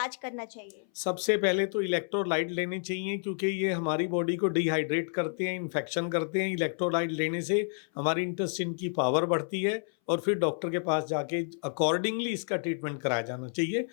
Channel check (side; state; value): right; silent; 58 dB below the other